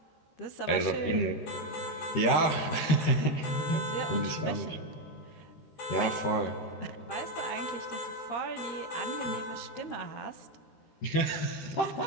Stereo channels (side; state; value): right; late; 13 ms